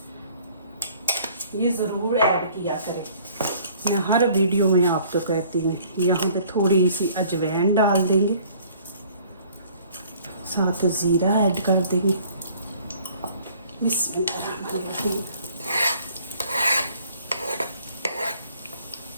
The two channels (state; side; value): inverted; both; correlation -0.55